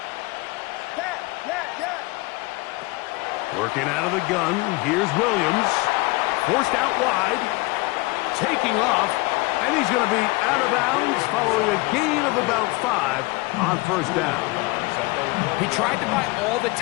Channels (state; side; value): quieter; right; 23.5 dB